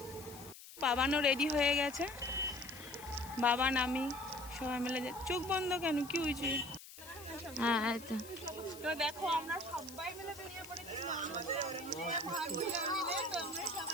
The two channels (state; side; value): noise; left; hiss, 16 dB below the sound